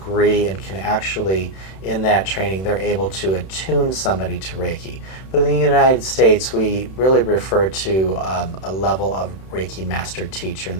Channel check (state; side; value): late; right; 31 ms